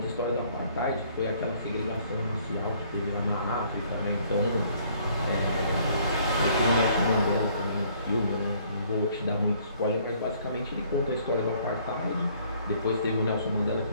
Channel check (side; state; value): both; inverted; correlation -0.61